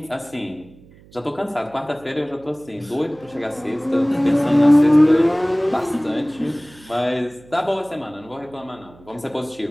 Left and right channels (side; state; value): right; noise; hum, 25 dB below the sound